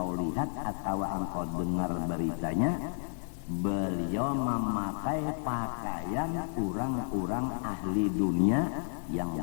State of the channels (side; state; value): right; silent; digital silence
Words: lihat atau engkau dengar beritanya, beliau memakai pakaian orang-orang ahli dunia yang